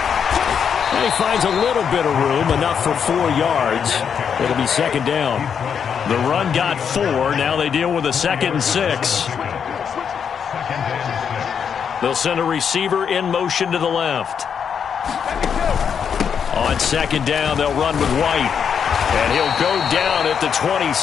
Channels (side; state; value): right; quieter; 7.3 dB